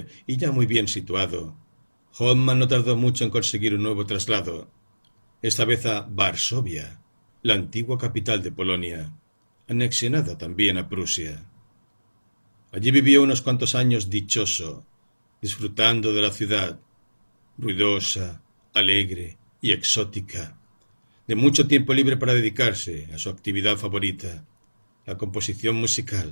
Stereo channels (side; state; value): both; inverted; correlation -1.00